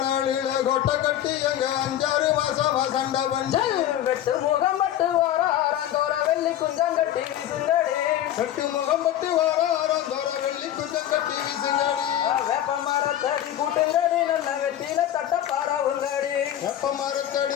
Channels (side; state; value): right; quieter; 11.8 dB